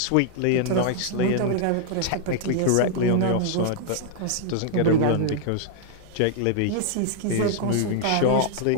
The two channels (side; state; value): both; different; correlation -0.01